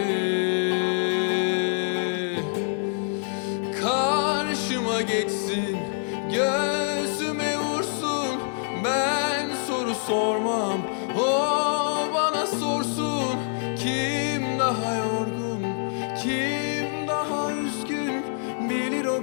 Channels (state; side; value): silent; right; 61 dB below the other